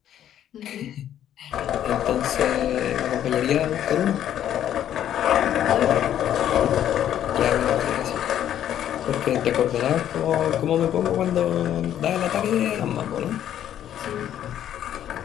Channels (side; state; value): right; quieter; 10.8 dB